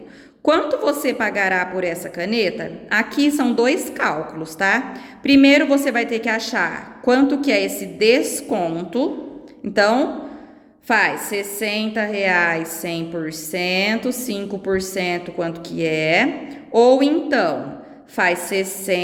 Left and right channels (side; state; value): both; identical; correlation 1.00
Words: Quanto você pagará por essa caneta? Aqui são dois cálculos, tá? Primeiro, você vai ter que achar quanto que é esse desconto. Então, faz R$60, 100%, 5% quanto que é. Ou então, faz